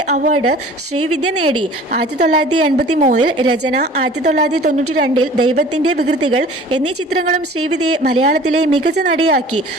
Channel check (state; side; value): normal; both; correlation 0.46